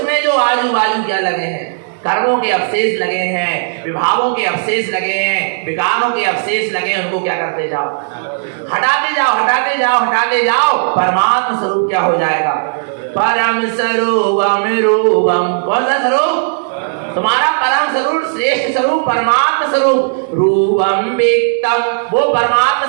जो आजू बाजू क्या लगे हैं? कर्मों के अवशेष लगे हैं, विभावों के अवशेष लगे हैं, विकारों के अवशेष लगे हैं, उनको क्या करते जाओ? हटाते जाओ, हटाते जाओ, हटाते जाओ। परमात्मा स्वरूप क्या हो जाएगा? परम स्वरूपम रूपम। कौन सा स्वरूप? तुम्हारा परम स्वरूप, श्रेष्ठ स्वरूप, परमात्मा स्वरूप। रूपम विक्तम, वो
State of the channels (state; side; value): silent; left; digital silence